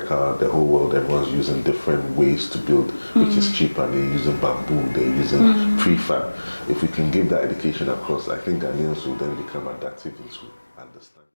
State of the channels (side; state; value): both; inverted; correlation -1.00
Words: the whole world, everyone's using different ways to build, which is cheaper. They're using bamboo, they're using prefab. If we can give that education across, I think Ghanaians will then become adaptive into understand.